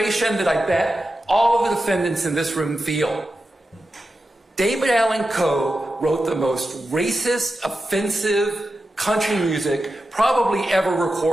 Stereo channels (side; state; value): both; normal; correlation 0.91